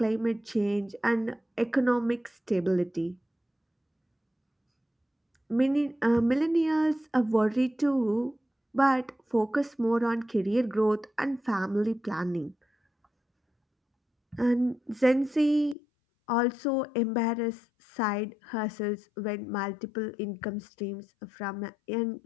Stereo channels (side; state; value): right; drops out; at 15.8 s